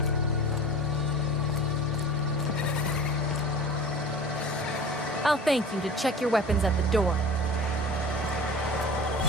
I'll thank you to check your weapons at the door.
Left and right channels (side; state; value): both; normal; correlation 0.39